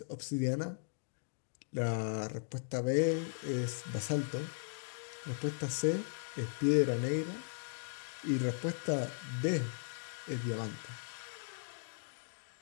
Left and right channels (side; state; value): right; silent; digital silence